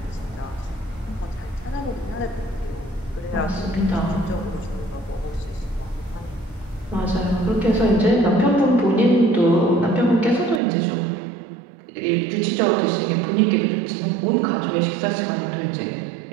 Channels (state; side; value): drops out; left; at 10.6 s